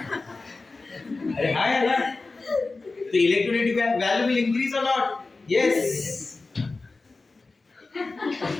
अरे हाँ यार, तो इलेक्ट्रोनेगेटिव वैल्यू विल इंक्रीज और नॉट? यस।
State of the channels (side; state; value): right; quieter; 3.7 dB